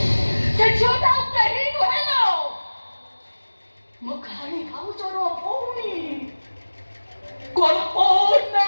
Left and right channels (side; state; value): both; inverted; correlation -1.00